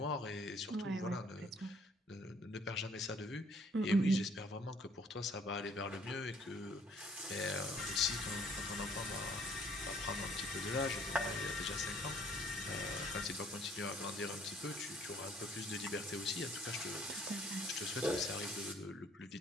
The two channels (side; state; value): both; normal; correlation 0.60